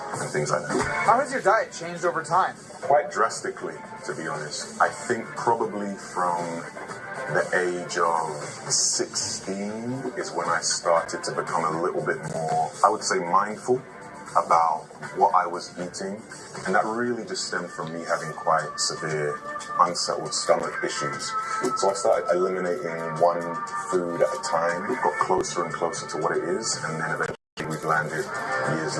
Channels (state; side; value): identical; both; correlation 1.00